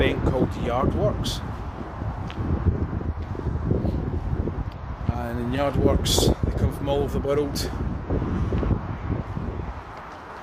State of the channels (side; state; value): both; identical; correlation 1.00